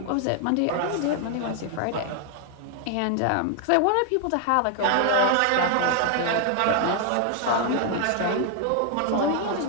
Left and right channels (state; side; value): different; both; correlation 0.00